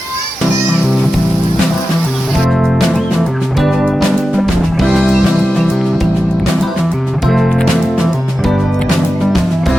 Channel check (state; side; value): normal; both; correlation 0.93